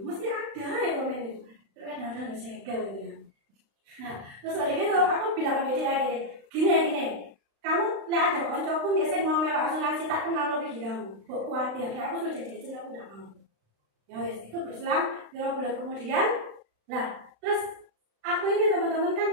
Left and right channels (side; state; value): left; late; 35 ms